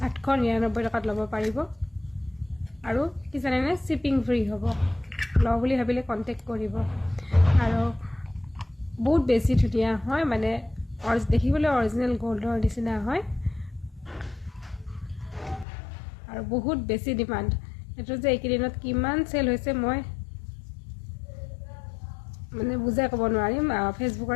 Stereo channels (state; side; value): drops out; right; at 15.7 s